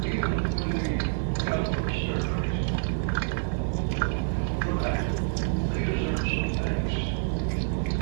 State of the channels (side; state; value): left; silent; 60 dB below the other